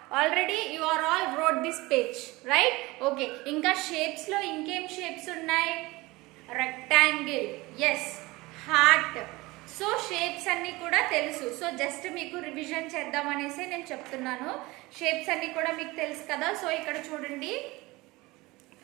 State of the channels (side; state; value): left; quieter; 21.6 dB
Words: Already you are all wrote this page, right? Okay. Inka shapes lo inkem shapes unnai? Rectangle. Yes. Heart. So shapes అన్నీ కూడా తెలుసు. So just మీకు revision చేద్దామనేసి నేను చెప్తున్నాను. Shapes అన్నీ కూడా మీకు తెలుసు కదా. సో ఇక్కడ చూడండి,